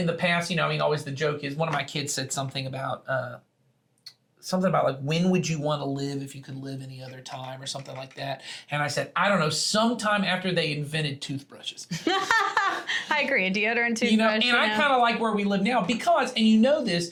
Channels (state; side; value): identical; both; correlation 1.00